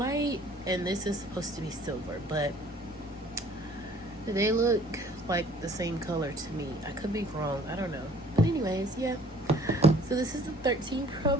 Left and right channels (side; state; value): both; normal; correlation 0.54